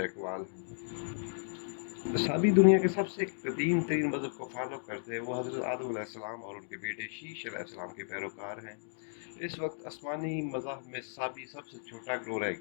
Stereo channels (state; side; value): silent; right; digital silence